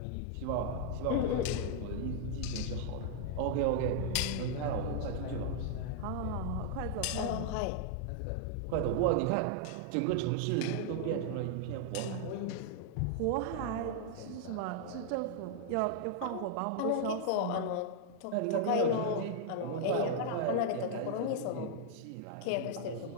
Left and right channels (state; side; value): different; both; correlation -0.01